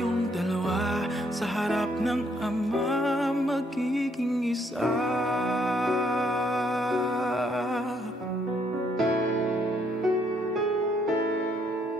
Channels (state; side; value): normal; both; correlation 0.70